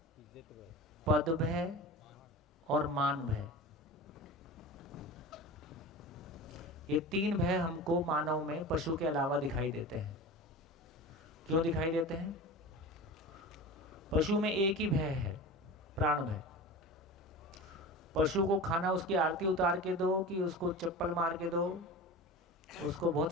पद भय और मान भय। ये 3 भय हमको मानव में पशु के अलावा दिखाई देते हैं। क्यों दिखाई देते हैं? पशु में एक ही भय है, प्राण भय। पशु को खाना उसकी आरती उतार के दो कि उसको चप्पल मार के दो, उसको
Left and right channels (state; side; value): normal; both; correlation 0.32